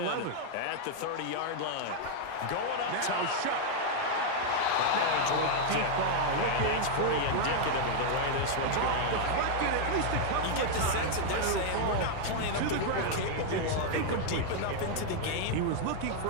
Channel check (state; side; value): different; both; correlation 0.00